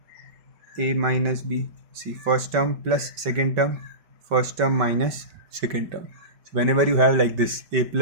a minus b. See, first term plus second term, first term minus second term. So whenever you have like this, a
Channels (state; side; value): late; left; 5.2 ms